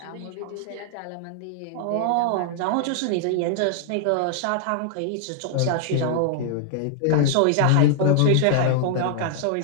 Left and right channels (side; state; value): both; different; correlation -0.01